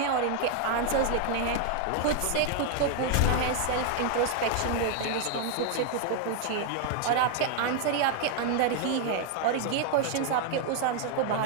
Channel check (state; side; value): different; both; correlation 0.00